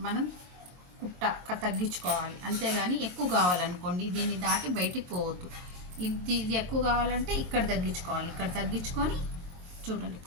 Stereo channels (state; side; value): late; left; 22 ms